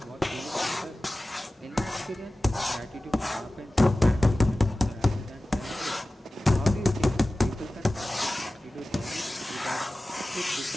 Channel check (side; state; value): both; normal; correlation 0.97